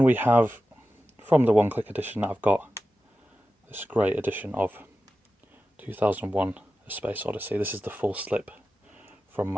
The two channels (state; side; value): normal; both; correlation 0.93